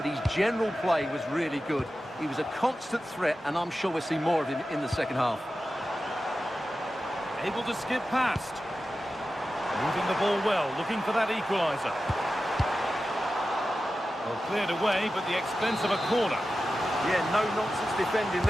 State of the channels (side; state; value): both; normal; correlation 0.93